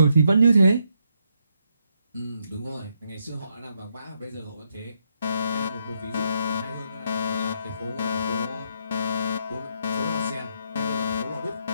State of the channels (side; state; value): both; inverted; correlation -0.78